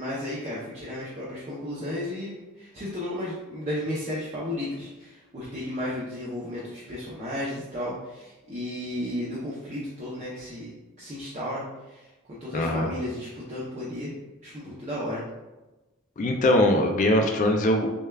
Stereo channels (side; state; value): both; normal; correlation 0.41